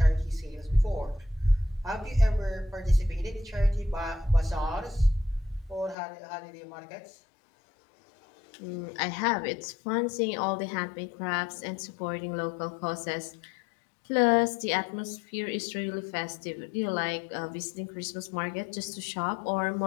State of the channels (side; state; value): right; drops out; at 6.0 s